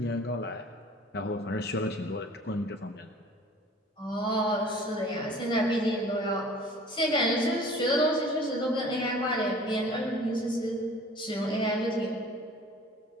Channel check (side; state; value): both; normal; correlation 0.47